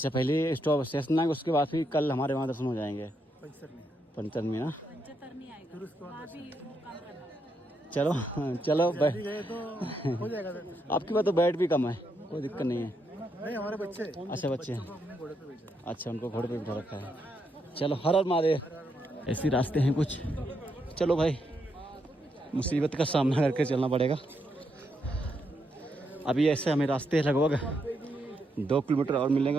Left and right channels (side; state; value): both; normal; correlation 0.79